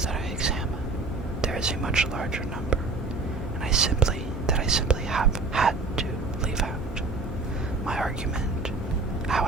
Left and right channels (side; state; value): left; quieter; 3.7 dB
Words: that I examine, there is a much larger number, and I simply have had to leave out. My argument,